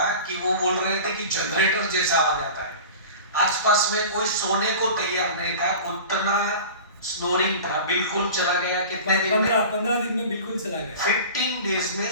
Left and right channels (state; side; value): inverted; both; correlation -0.37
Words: कि वो बोल रहे थे कि जनरेटर जैसा आवाज आता है। आसपास में कोई सोने को तैयार नहीं था, उतना स्नोरिंग था। बिल्कुल चला गया कितने दिन में? 15 दिन में बिल्कुल चला गया। 15 डेज में